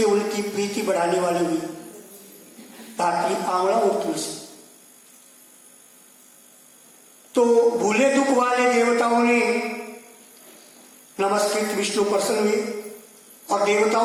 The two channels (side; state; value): both; identical; correlation 1.00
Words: उनकी प्रीति बढ़ाने वाली हुई। धात्री, आंवला और तुलसी। तो भूले दुख वाले देवताओं ने नमस्कृत विष्णु प्रसन्न हुए और